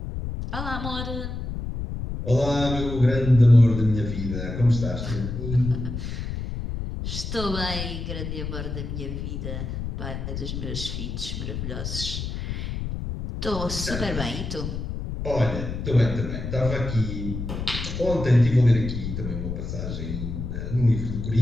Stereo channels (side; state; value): left; noise; rumble, 5 dB below the sound